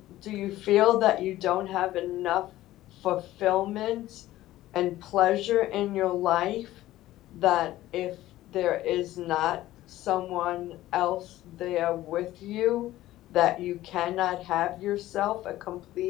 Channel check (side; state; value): right; quieter; 15.3 dB